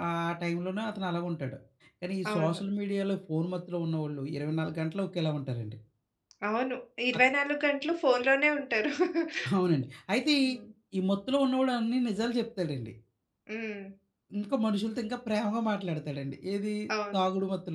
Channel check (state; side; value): identical; both; correlation 1.00